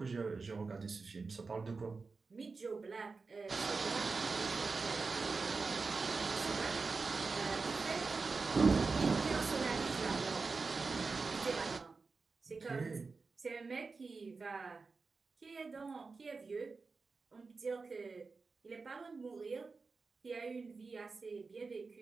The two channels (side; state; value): left; quieter; 4.3 dB